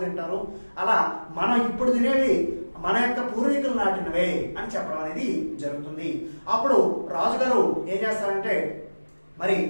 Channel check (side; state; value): both; inverted; correlation -1.00